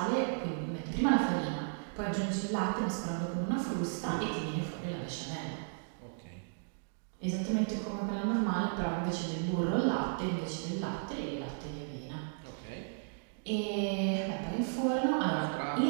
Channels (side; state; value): left; silent; digital silence